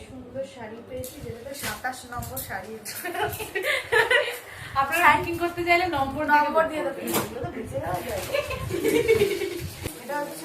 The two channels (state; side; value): identical; both; correlation 1.00